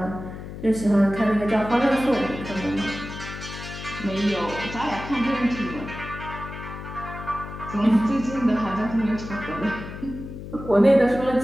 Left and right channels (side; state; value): left; noise; hum, 10 dB below the sound